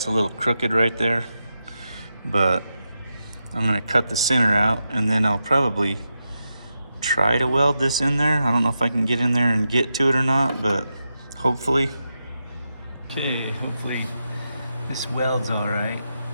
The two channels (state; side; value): inverted; both; correlation -0.87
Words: a little crooked right there. But I'm gonna cut the center out, and then I'll probably try to weld this in there. I don't know if I can get in there and get to it or not, but hopefully. Okay, hopefully this welds all right.